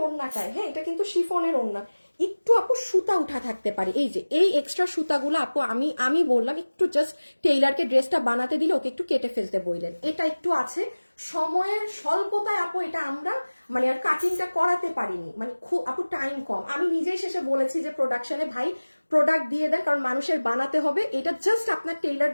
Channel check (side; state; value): both; inverted; correlation -1.00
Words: ওড়নাটায়, হ্যাঁ এটা কিন্তু শিফনের ওড়না, একটু আপু সুতা উঠা থাকতে পারে। এই যে এই এক্সট্রা সুতাগুলো আপু আমি বললাম একটু জাস্ট টেইলারকে ড্রেসটা বানাতে দিলে ওকে একটু কেটে ফেলতে বললেন, এটা একটু আছে। সময়ের স্বল্পতায় আপু এটা আমরা মানে আর কাটিংটা করাতে পারিনি, মানে খুব আপু টাইম কম। আমি নিজেই শেষে বলেছি যে প্রোডাকশনে ভাই প্রোডাক্ট দিয়ে দেন, কারণ মানুষের বানাতে হবে। এটা জাস্ট আপনার টেইলার